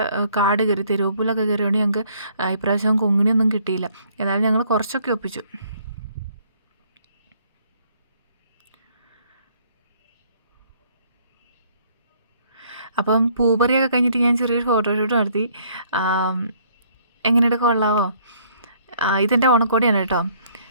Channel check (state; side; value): inverted; both; correlation -0.63